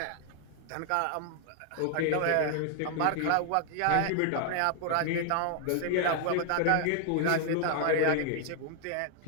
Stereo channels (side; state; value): both; different; correlation 0.00